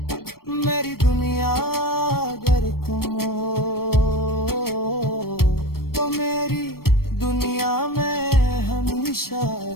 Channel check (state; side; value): late; right; 0.94 ms